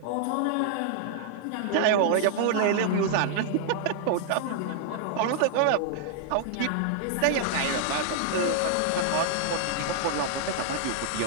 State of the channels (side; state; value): both; different; correlation -0.01